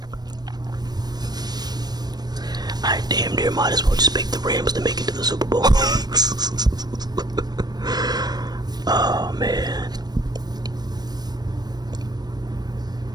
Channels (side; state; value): left; late; 0.19 ms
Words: I damn near might as well just pick the Rams to make it to the Super Bowl. Oh, man.